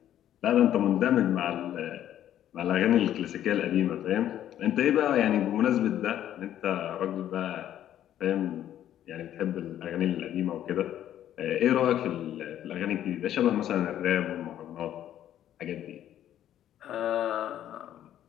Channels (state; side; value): quieter; right; 11.4 dB